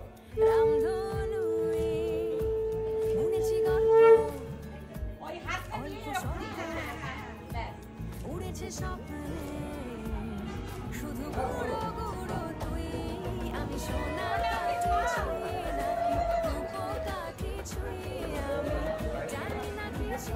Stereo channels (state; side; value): identical; both; correlation 1.00